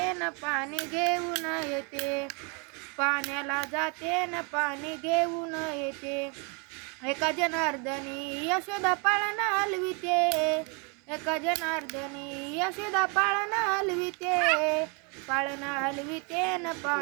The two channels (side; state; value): left; quieter; 33.6 dB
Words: न पाणी घेऊन येते. पाण्याला जाते न पाणी घेऊन येते. एका जनार्दनी यशोदा पाळणा हलविते. एका जनार्दनी यशोदा पाळणा हलविते. पाळणा हलविते न